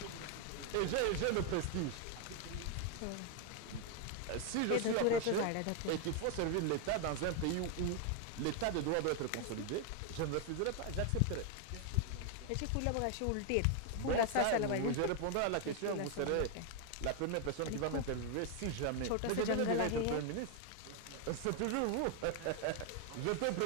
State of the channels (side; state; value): both; different; correlation 0.01